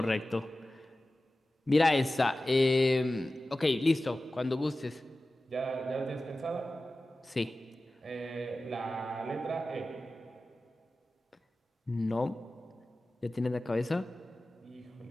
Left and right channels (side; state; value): both; normal; correlation 0.96